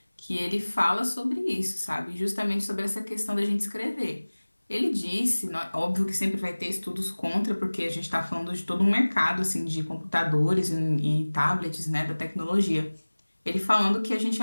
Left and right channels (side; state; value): both; inverted; correlation -1.00